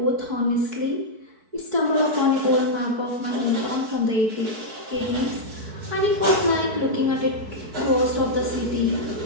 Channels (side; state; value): left; late; 4.6 ms